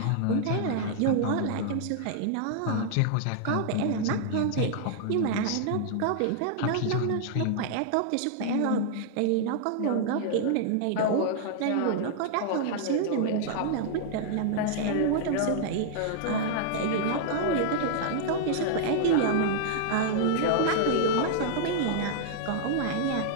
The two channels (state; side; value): different; both; correlation -0.01